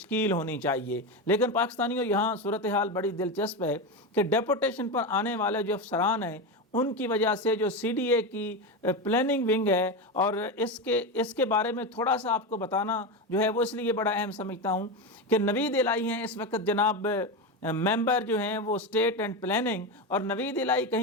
ہونی چاہیے۔ لیکن پاکستانیوں، یہاں صورتحال بڑی دلچسپ ہے کہ ڈیپوٹیشن پر آنے والے جو افسران ہیں ان کی وجہ سے جو CDA کی پلاننگ ونگ ہے، اور اس کے بارے میں تھوڑا سا آپ کو بتانا جو ہے وہ اس لیے بڑا اہم سمجھتا ہوں کہ نوید الہی ہیں اس وقت جناب ممبر جو ہیں وہ اسٹیٹ اینڈ پلاننگ، اور نوید الہی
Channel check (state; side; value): normal; both; correlation 0.16